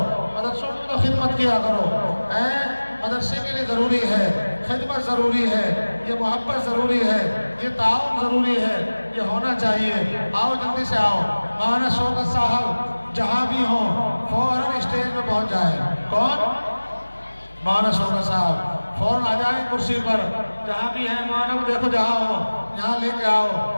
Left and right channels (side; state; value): both; inverted; correlation -1.00